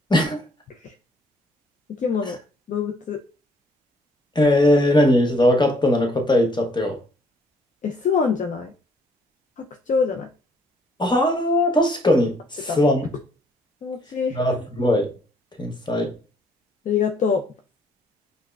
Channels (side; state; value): both; normal; correlation 0.65